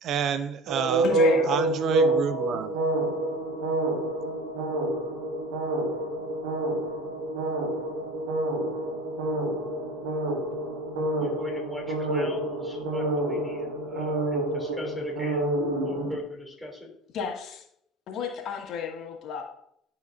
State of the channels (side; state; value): both; normal; correlation 0.33